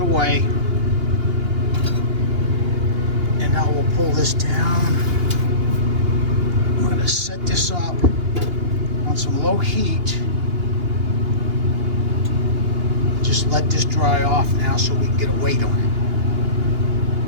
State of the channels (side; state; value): left; late; 2.8 ms